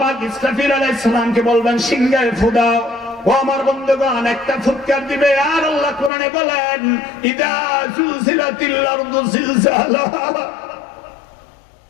ইসরাফিল আলাইহিস সালামকে বলবেন সিংহায় ফু দাও। ও আমার বন্ধুগণ, একটা ফুৎকার দিবে আর আল্লাহ কোরআনে বলেন ইদা জুলজিলাতিল আরদু জিলজালাহা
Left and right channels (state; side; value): drops out; right; at 6.1 s